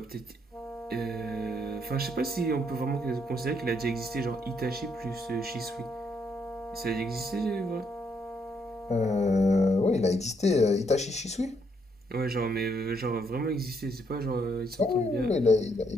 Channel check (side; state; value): both; normal; correlation 0.73